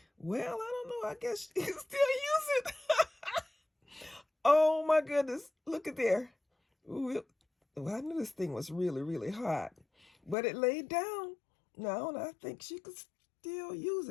well, I don't know. I guess you can still use it. Oh, my goodness. Look at there. Ooh, well, I knew this thing was really, really hot, but it laid down. Now, and I think she could still use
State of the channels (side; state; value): right; drops out; at 10.4 s